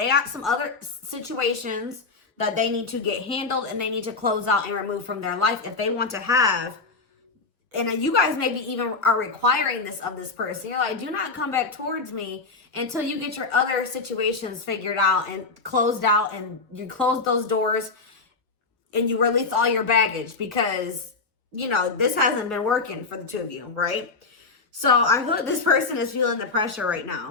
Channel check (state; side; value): quieter; right; 4.1 dB